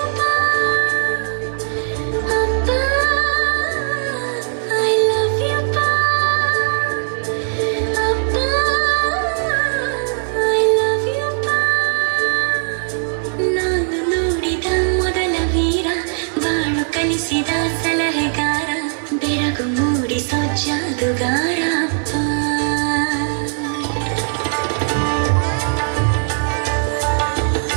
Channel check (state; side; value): silent; left; 62 dB below the other